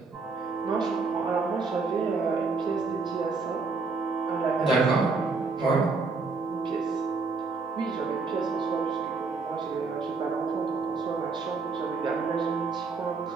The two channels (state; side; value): quieter; left; 4.3 dB